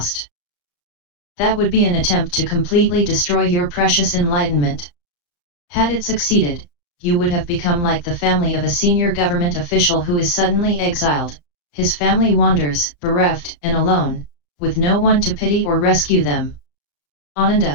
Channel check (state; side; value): late; right; 35 ms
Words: That would be an attempt to completely destroy your precious enlightenment. Had it succeeded, you would have become like the family of a senior government official who is suddenly exiled. His family wanders, bereft and alone, with no one to pity or rescue them.